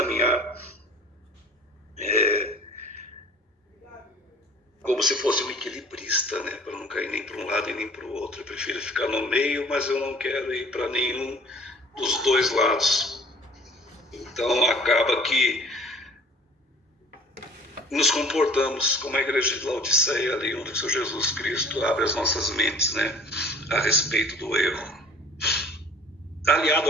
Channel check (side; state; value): both; normal; correlation 0.49